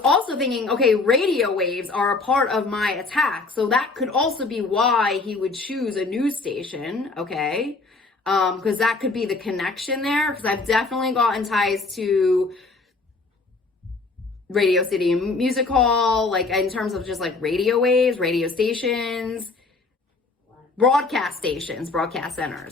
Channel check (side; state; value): right; quieter; 3.8 dB